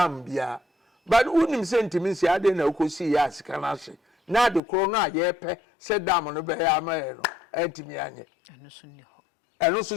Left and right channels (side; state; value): right; drops out; at 4.6 s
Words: bia but unim se entimi si ade na okosi ya sika na hye na de kro no aye pe se dam no be ya ma e no entimi anye eno so